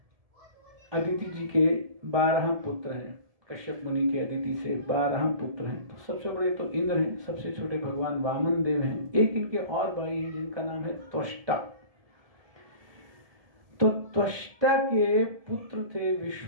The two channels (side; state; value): left; late; 1.7 ms